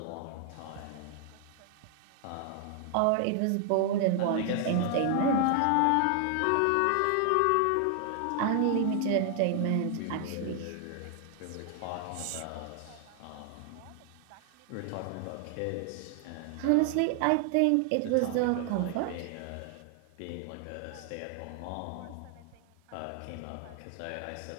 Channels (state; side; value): different; both; correlation 0.00